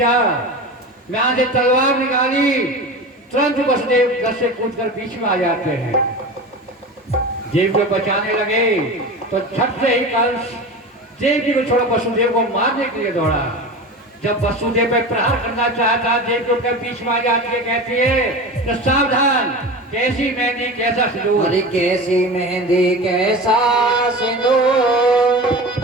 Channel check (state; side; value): normal; both; correlation 0.30